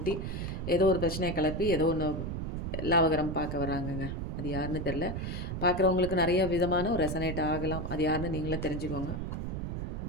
ஏதோ ஒரு பிரச்சனையை கிளப்பி ஏதோ ஒன்று லாபகரம் பார்க்க வராங்கங்க. அது யாருன்னு தெரில. பார்க்குறவங்களுக்கு நிறைய விதமான ஒரு ரெசனேட் ஆகலாம். அது யாருன்னு நீங்களே தெரிஞ்சுக்கோங்க.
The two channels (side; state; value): right; noise; rumble, 4 dB below the sound